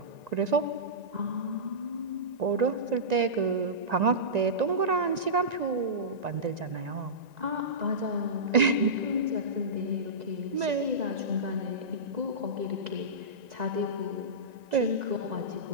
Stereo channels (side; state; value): left; late; 1.9 ms